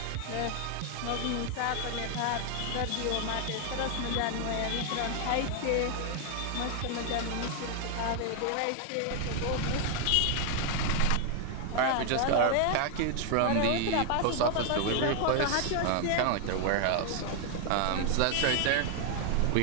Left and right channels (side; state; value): both; different; correlation 0.00